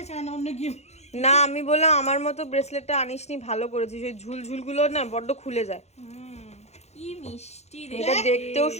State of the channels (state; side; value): late; right; 0.31 ms